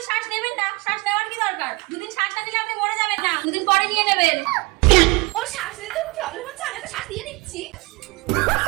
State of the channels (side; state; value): left; quieter; 25.4 dB